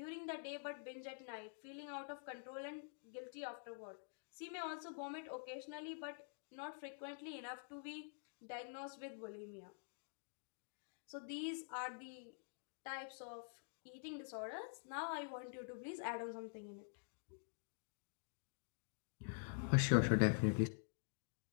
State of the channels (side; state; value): right; silent; digital silence